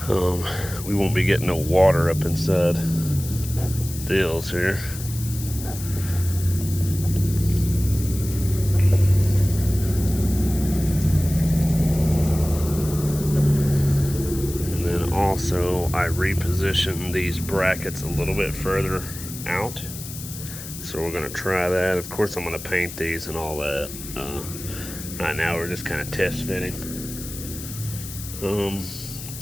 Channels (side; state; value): left; noise; hiss, 11 dB below the sound